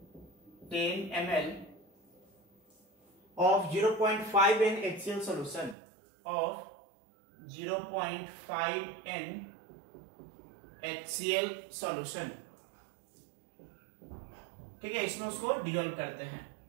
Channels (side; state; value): left; drops out; at 5.8 s